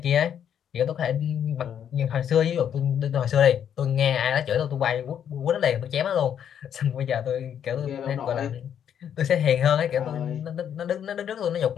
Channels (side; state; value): right; quieter; 9.0 dB